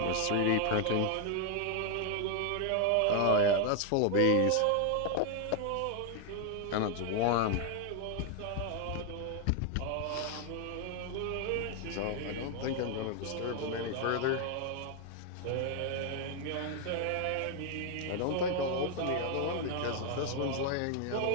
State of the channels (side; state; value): both; different; correlation 0.01